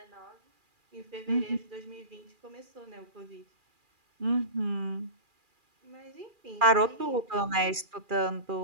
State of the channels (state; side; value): late; left; 2.4 ms